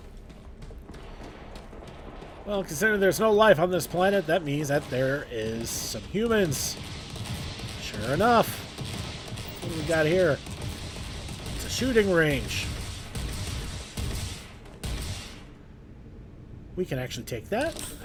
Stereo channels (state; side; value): identical; both; correlation 1.00